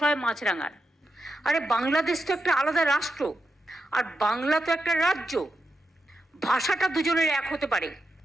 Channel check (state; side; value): normal; both; correlation 0.87